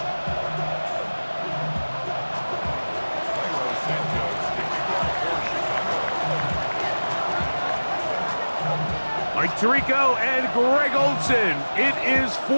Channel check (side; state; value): both; inverted; correlation -1.00